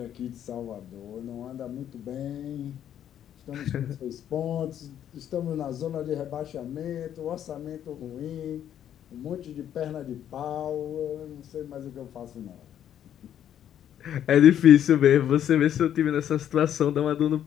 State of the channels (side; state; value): right; quieter; 10.2 dB